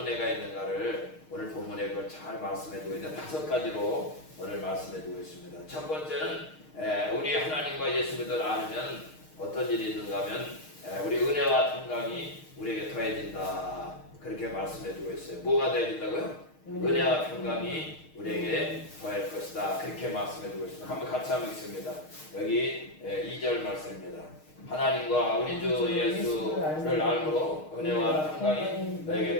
은혜가 있는가를 오늘 본문에 그걸 잘 말씀해 주고 있는 5가지로 오늘 말씀해 주고 있습니다. 첫 번째는 우리 하나님과 예수 그리스도를 알면 어떤 일이 있는가 하면 우리 은혜와 평강이 우리에게 더해진다. 그렇게 말씀해 주고 있어요. 뭐가 더해진다고요? 은혜와 평강이 우리에게 더할 것이다. 그렇게 말씀해 주고 있습니다. 한번 같이 한번 읽습니다. 여기 2절 말씀입니다. 하나님과 우리 주 예수를 알므로 은혜와 평강이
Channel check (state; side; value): late; right; 6.5 ms